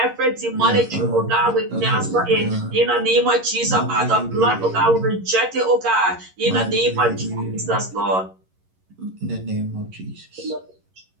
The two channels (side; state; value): left; late; 11 ms